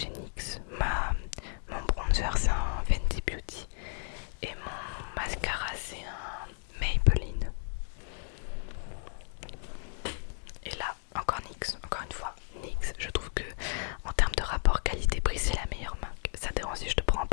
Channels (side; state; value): right; silent; 55 dB below the other